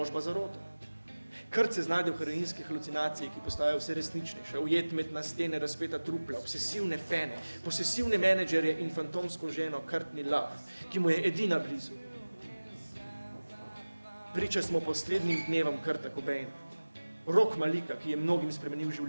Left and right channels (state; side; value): inverted; both; correlation -1.00